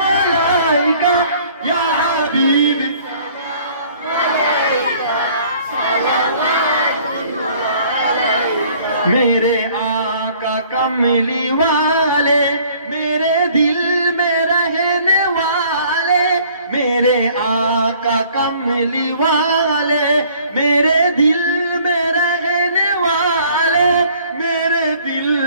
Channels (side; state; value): both; inverted; correlation -0.56